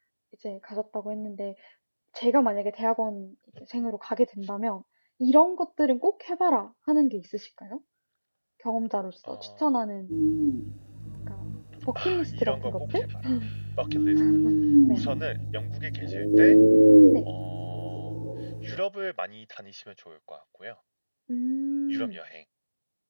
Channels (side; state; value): both; inverted; correlation -1.00